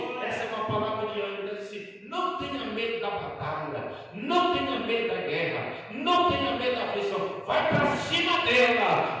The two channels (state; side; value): identical; both; correlation 1.00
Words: essa é uma palavra de ânimo, assim, não tenha medo da batalha, não tenha medo da guerra, não tenha medo da aflição, vai para cima dela,